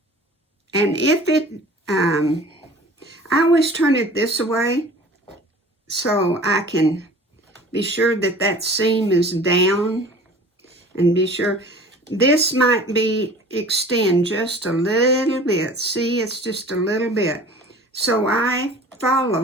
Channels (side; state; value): both; normal; correlation 0.44